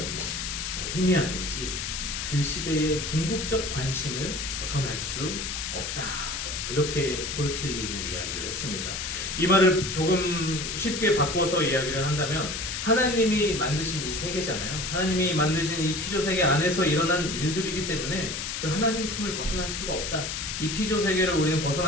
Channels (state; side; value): noise; left; hiss, 4 dB below the sound